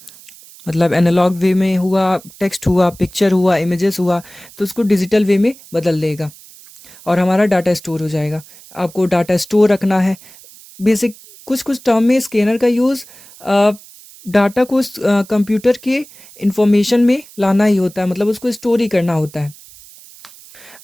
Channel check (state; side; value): noise; right; hiss, 22 dB below the sound